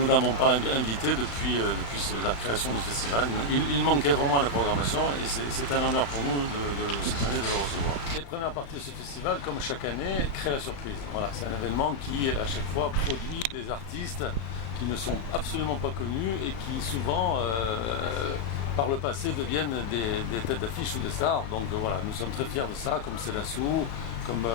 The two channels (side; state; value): right; late; 35 ms